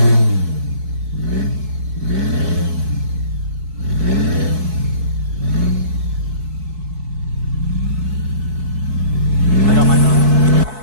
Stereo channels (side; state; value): left; late; 4.6 ms